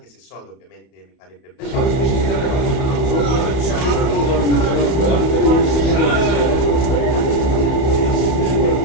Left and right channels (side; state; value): right; late; 31 ms